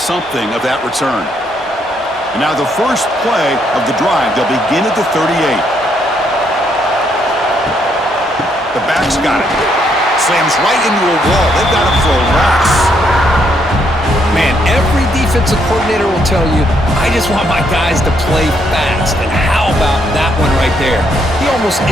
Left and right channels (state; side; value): normal; both; correlation 0.73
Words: of that return. And now the first play of the drive, they'll begin at the 38. The back's got it. Slams right into a wall. They've got him for a loss. Man, every defensive coordinator will tell you, I just want my guys to play fast. And how about that one right there? He almost